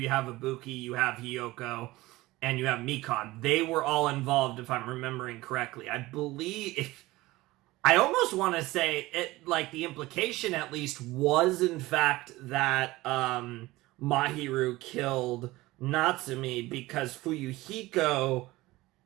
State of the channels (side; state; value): left; quieter; 19.1 dB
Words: you have Ibuki, you have Hiyoko, and you have Mikon. They were all involved, if I'm remembering correctly. I believe... I almost want to say it, like, the implication at least was in fact that Mahiru killed Natsumi because Fuyuhiko,